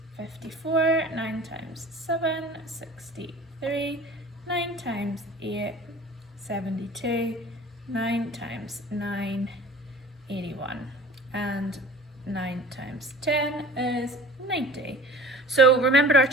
54, 9 times 7, 63, 9 times 8, 72, 9 times 9, 81, and 9 times 10 is 90. So remember our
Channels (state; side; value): normal; both; correlation 0.43